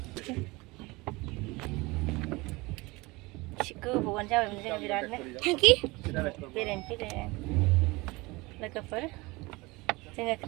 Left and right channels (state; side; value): quieter; left; 23.3 dB